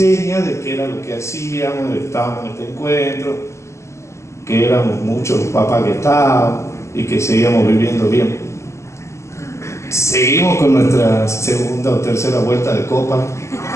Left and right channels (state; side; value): late; right; 0.14 ms